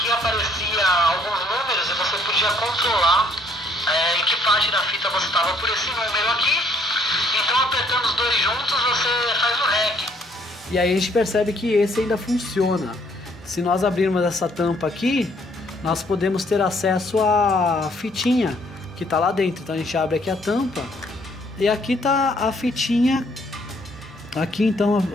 aparecia alguns números e você podia controlar em que parte da fita você estava por esse número aqui. Então apertando os dois juntos você faz o REC. E aí a gente percebe que esse ainda funciona. Se nós abrirmos essa tampa aqui, nós podemos ter acesso à fitinha que está lá dentro. Então a gente abre aqui a tampa e aqui está a fitinha aqui, então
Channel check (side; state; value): both; normal; correlation 0.65